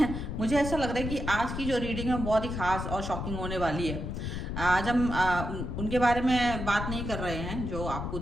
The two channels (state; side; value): noise; left; rumble, 4 dB below the sound